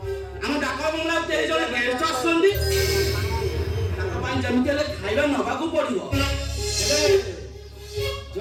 हम डाका बंगला ते जने गेस्ट आछंदी डाका पाइन जमितेले खाइबा नबा को पड़िबो हेलो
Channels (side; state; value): both; identical; correlation 1.00